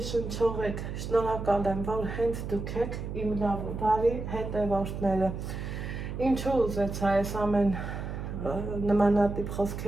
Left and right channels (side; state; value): right; noise; hum, 6 dB below the sound